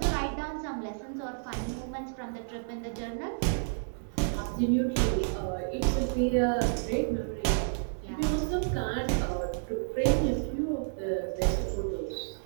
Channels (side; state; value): left; silent; 57 dB below the other